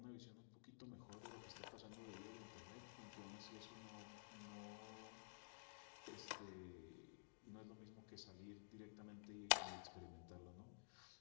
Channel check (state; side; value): silent; right; digital silence